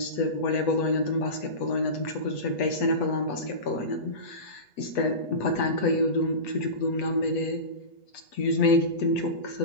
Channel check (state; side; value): late; right; 8.2 ms